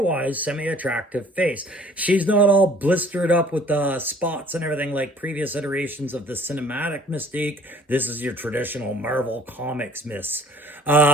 semi-attractive face. She's not all blistered up with the spots and everything like previous iterations of the cinematic Mystique. This is your traditional Marvel Comics Miss.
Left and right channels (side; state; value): both; normal; correlation 0.53